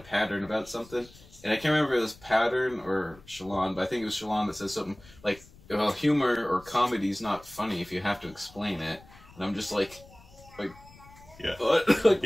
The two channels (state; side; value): noise; left; rumble, 23 dB below the sound